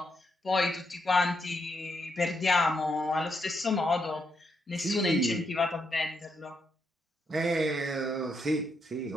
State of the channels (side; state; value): both; normal; correlation 0.79